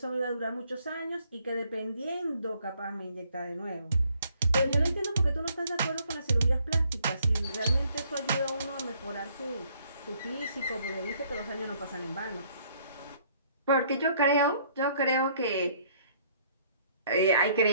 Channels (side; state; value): both; inverted; correlation -0.64